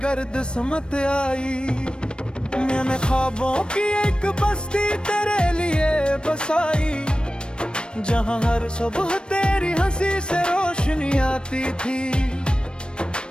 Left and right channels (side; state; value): right; late; 0.054 ms